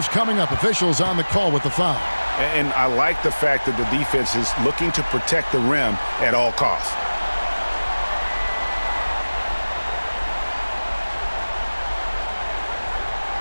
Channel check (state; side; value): inverted; both; correlation -1.00